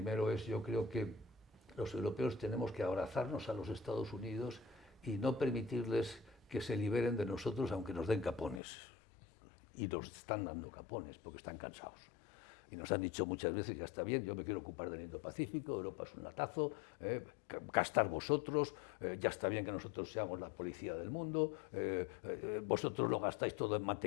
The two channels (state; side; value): drops out; right; at 8.6 s